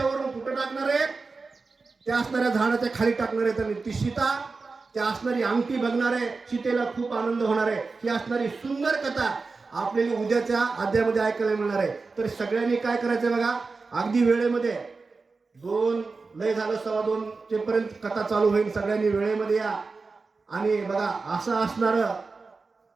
कुठं टाकणार आहेत, त्या असणाऱ्या झाडाच्या खाली टाकणार आहेत. आणि ती सीता त्या असणारी अंगठी बघणार आहे, सीतेला खूप आनंद होणार आहे. ही असणारी सुंदर कथा आपल्याला उद्याच्या अध्यायामध्ये ऐकायला मिळणार आहे. तर सगळ्यांनी काय करायचं बघा, अगदी वेळेमध्ये 2 लय झालं 2:15 पर्यंत कथा चालू होईल. सगळ्यांनी वेळेमध्ये या आणि बघा असं असणारं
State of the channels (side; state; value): left; quieter; 4.1 dB